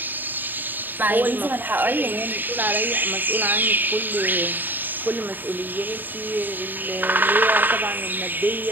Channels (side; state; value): left; late; 0.090 ms